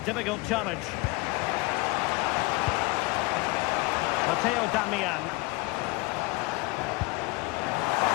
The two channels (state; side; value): quieter; right; 23.6 dB